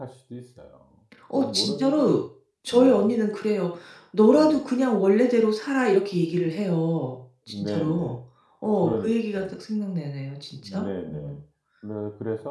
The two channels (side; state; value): both; identical; correlation 1.00